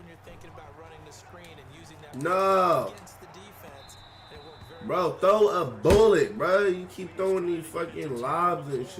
you're thinking about running the screen and using that against the defense. Bro, throw a bullet, bro. You keep throwing these fucking lobs and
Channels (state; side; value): identical; both; correlation 1.00